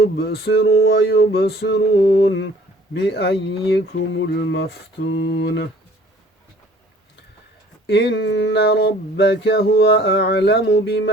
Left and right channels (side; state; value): both; normal; correlation 0.53